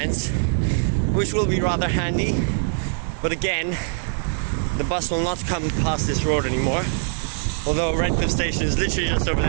which will be rather handy. But again, the bus will not come past this road anymore. Although Redcliffe Station is literally just over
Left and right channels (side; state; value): left; silent; digital silence